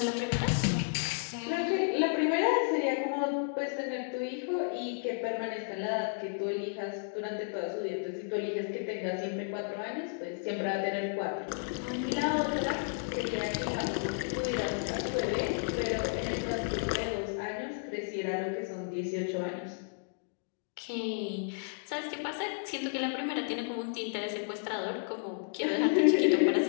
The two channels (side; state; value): right; silent; digital silence